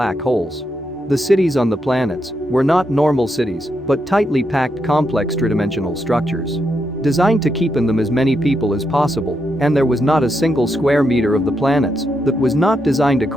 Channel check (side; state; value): both; normal; correlation 0.82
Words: holes. The cities on the planets were not normal cities, but tightly packed complex tridimensional structures. Designed to keep in them as many people as possible, and there was not a single square meter of the planets that was not designed